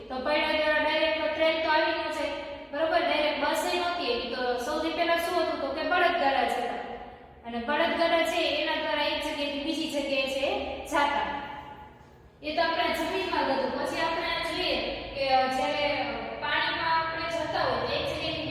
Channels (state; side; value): identical; both; correlation 1.00